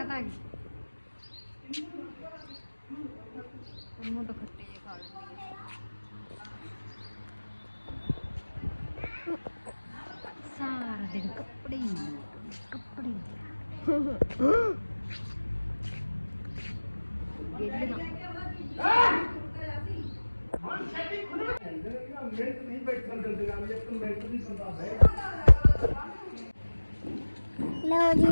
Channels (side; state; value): both; inverted; correlation -1.00